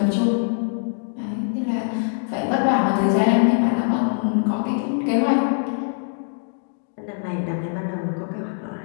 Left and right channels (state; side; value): silent; right; digital silence